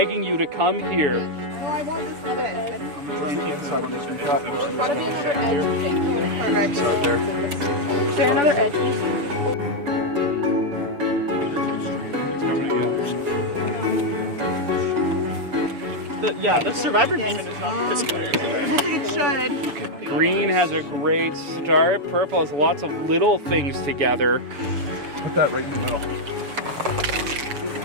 you to come here. Oh, I want this other edge. There's gotta be another edge thing. Perfect. Is there another edge? The Survivor Beeman is not this good. I think it should. Green has a great start. Purple has lots of little things together. Put that right in the middle.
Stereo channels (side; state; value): left; late; 6.9 ms